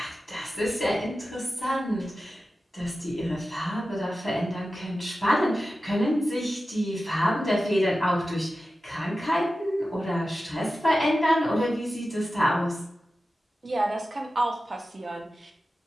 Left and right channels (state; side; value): normal; both; correlation 0.93